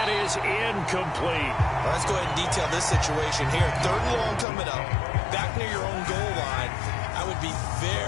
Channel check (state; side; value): drops out; right; at 4.5 s